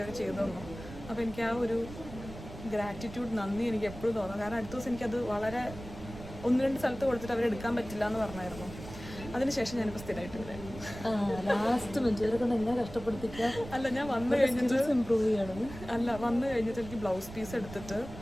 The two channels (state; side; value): noise; right; rumble, 13 dB below the sound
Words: ചെയ്തു തന്നു. അപ്പോൾ എനിക്ക് ആ ഒരു ഗ്രാറ്റിറ്റ്യൂഡ്, നന്ദി എനിക്ക് എപ്പോഴും തോന്നും. കാരണം അടുത്ത ദിവസം എനിക്കത് വളരെ 1-2 സ്ഥലത്ത് കൊടുത്തിട്ട് അവരെടുക്കാൻ പറ്റില്ല എന്ന് പറഞ്ഞായിരുന്നു. അതിനുശേഷം ഞാനിപ്പോൾ സ്ഥിരമായിട്ട് വരാം. ലാസ്റ്റ് മിനിറ്റ് കൊണ്ട് എന്നെ കഷ്ടപ്പെടുത്തിക്കുക. അല്ല, ഞാൻ വന്നു കഴിഞ്ഞിട്ട് ഇമ്പ്രൂവ് ചെയ്യണം. വന്നു കഴിഞ്ഞിട്ട് എനിക്ക് ബ്ലൗസ് പീസ് എടുത്തിട്ട്